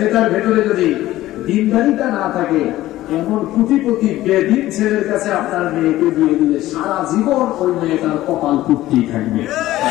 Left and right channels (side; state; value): right; quieter; 15.5 dB